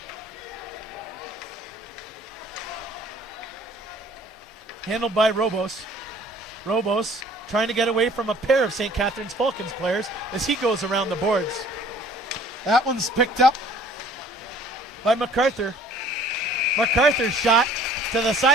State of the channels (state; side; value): normal; both; correlation 0.53